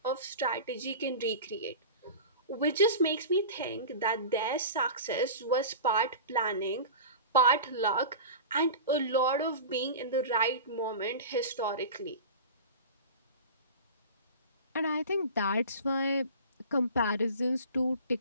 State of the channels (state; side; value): inverted; both; correlation -0.34